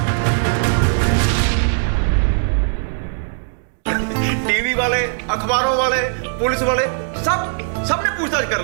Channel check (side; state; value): left; silent; digital silence